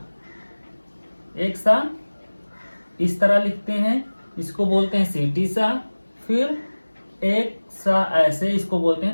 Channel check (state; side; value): inverted; both; correlation -1.00